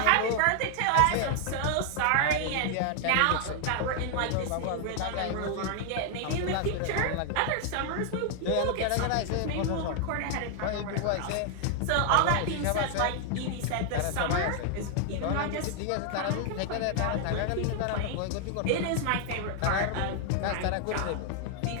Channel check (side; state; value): both; different; correlation 0.00